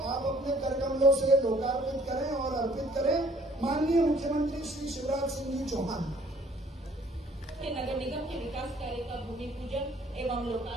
आप अपने कर कमलों से लोकार्पित करें और अर्पित करें। माननीय मुख्यमंत्री श्री शिवराज सिंह जी चौहान के नगर निगम के विकास कार्य का भूमि पूजन एवं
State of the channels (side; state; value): both; normal; correlation 0.58